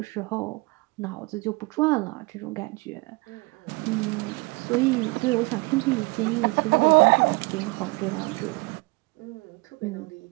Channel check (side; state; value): left; quieter; 26.2 dB